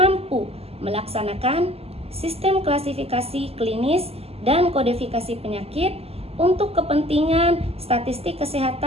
melaksanakan sistem klasifikasi klinis dan kodifikasi penyakit untuk kepentingan statistik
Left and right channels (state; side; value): late; left; 0.29 ms